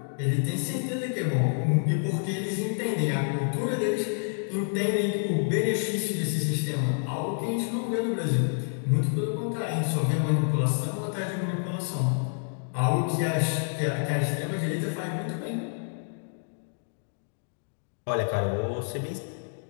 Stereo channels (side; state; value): right; silent; digital silence